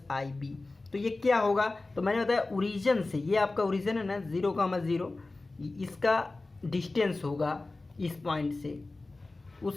ib। तो ये क्या होगा, तो मैंने बताया ओरिजिन से, ये आपका ओरिजिन है ना 0,0, इसका डिस्टेंस होगा इस पॉइंट से,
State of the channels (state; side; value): quieter; right; 3.2 dB